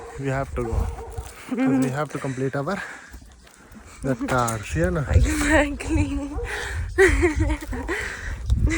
we have to go. Because we have to complete our the cars, yeah, no? Exactly.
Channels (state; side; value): identical; both; correlation 1.00